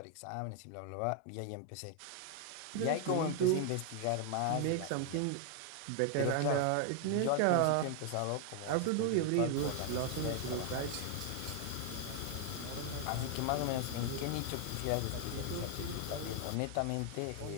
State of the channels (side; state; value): both; different; correlation 0.00